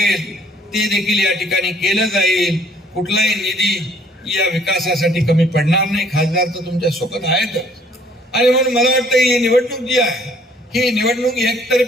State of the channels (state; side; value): normal; both; correlation 0.61